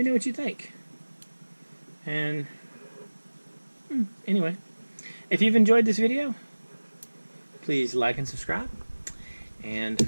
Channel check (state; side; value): inverted; both; correlation -1.00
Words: know what you think. And anyway, if you've enjoyed this video, please like and subscribe.